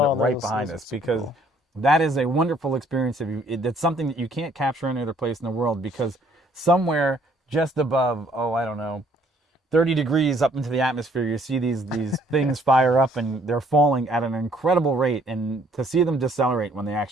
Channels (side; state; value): both; normal; correlation 0.63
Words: right behind us, because that is a wonderful experience. It's something that you can't capture any other place in the world, because somewhere just above, I don't know, 30 degrees up into the atmosphere, you see these things fire up, and they're falling at an incredible rate. And to see them decelerate when they